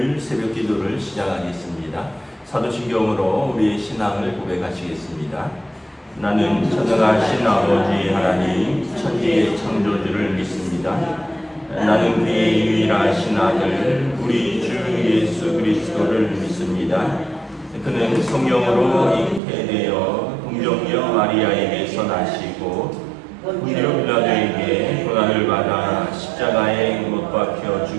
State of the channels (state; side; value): drops out; left; at 19.4 s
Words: 새벽 기도를 시작하겠습니다. 사도신경으로 우리의 신앙을 고백하시겠습니다. 나는 전능하신 아버지 하나님 천지의 창조주를 믿습니다. 나는 그의 유일하신 아들 우리 주 예수 그리스도를 믿습니다. 그는 성령으로 잉태되어 동정녀 마리아에게서 나시고 본디오 빌라도에게 고난을 받아 십자가에 못 박혀